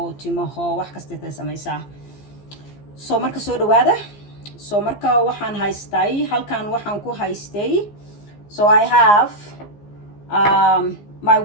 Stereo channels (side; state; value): right; late; 15 ms